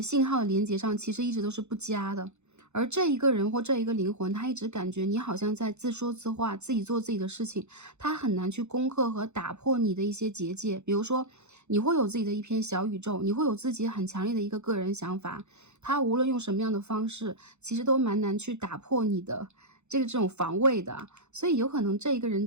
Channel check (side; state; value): left; late; 0.82 ms